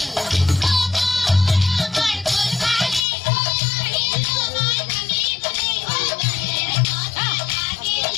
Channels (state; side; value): drops out; right; at 3.1 s